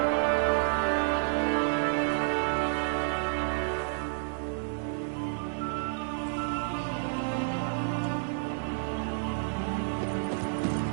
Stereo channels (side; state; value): left; silent; digital silence